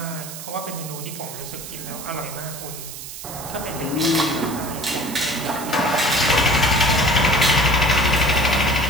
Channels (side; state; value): right; noise; hiss, 11 dB below the sound